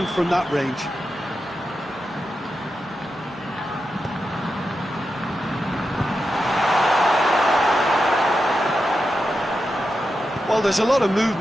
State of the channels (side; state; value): both; normal; correlation 0.89